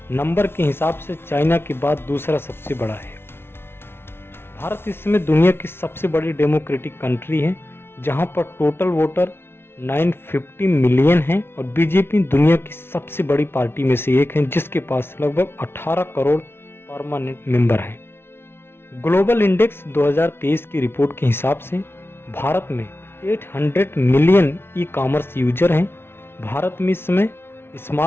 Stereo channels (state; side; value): late; right; 0.12 ms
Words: नंबर के हिसाब से चाइना के बाद दूसरा सबसे बड़ा है। भारत इस समय दुनिया की सबसे बड़ी डेमोक्रेटिक कंट्री है, जहां पर टोटल वोटर 950 मिलियन हैं और बीजेपी दुनिया की सबसे बड़ी पार्टी में से एक है, जिसके पास लगभग 18 करोड़ परमानेंट मेंबर हैं। ग्लोबल इंडेक्स 2023 की रिपोर्ट के हिसाब से भारत में 800 मिलियन ई कॉमर्स यूजर हैं। भारत में इस समय